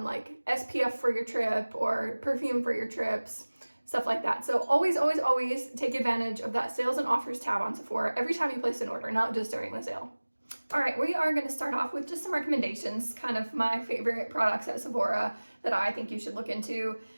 like SPF for your trip or perfume for your trips, stuff like that. So always, always, always take advantage of that sales and offers tab on Sephora every time you place an order, not just during the sale. All right, we are going to start off with just some recommendations, kind of my favorite products at Sephora that I think you should look into.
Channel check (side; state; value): both; inverted; correlation -1.00